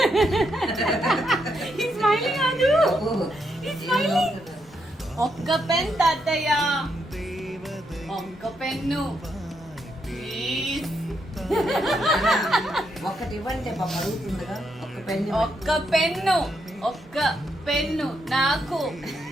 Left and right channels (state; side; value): normal; both; correlation 0.79